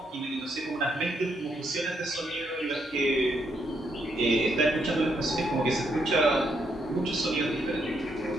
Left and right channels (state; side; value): normal; both; correlation 0.76